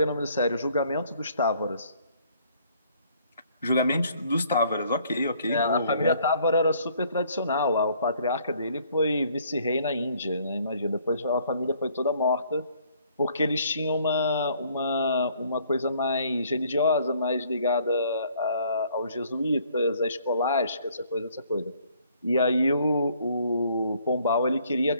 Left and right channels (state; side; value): inverted; both; correlation -0.62